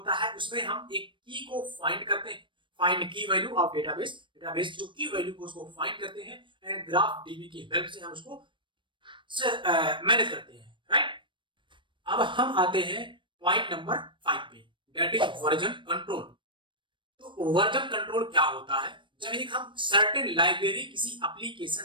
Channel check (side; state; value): left; late; 0.24 ms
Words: है, उसमें हम एक की को फाइंड करते हैं, फाइंड की वैल्यू ऑफ डेटाबेस, डेटाबेस जो की वैल्यू को उसको फाइंड करते हैं, एंड ग्राफ डीबी की हेल्प से हम उसको मैनेज करते हैं, राइट। अब हम आते हैं पॉइंट नंबर 5 पे, दैट इज वर्जन कंट्रोल। तो वर्जन कंट्रोल क्या होता है, जब एक हम सर्टेन लाइब्रेरी किसी